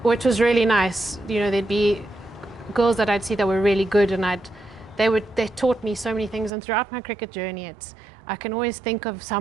which was really nice. You know, there'd be girls that I'd see that were really good, and they taught me so many things. And throughout my cricket journey, I can always think of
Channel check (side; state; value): left; drops out; at 6.5 s